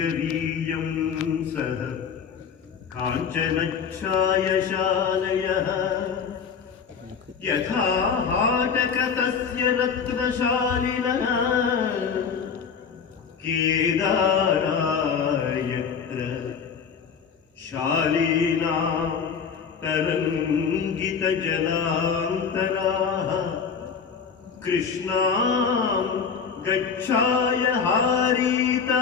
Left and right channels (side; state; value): right; quieter; 6.4 dB